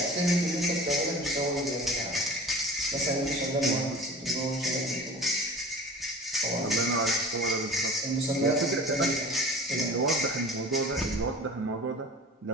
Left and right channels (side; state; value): both; normal; correlation 0.41